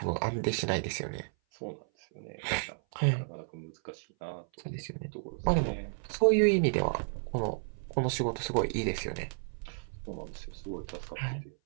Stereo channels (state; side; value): silent; left; 56 dB below the other